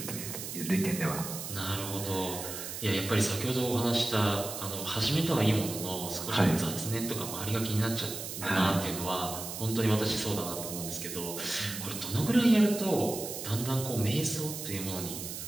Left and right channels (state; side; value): noise; right; hiss, 7 dB below the sound